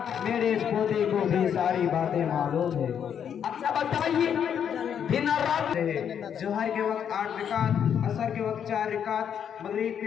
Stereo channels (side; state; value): right; quieter; 8.4 dB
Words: میرے اس پوتے کو بھی ساری باتیں معلوم ہے۔ اچھا بتائیے، دن اور رات ظہر کے وقت 8 رکعت، عصر کے وقت 4 رکعت، مغرب